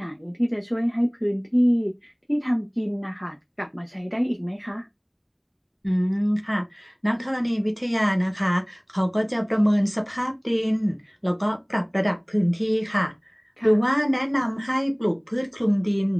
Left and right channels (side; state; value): both; identical; correlation 1.00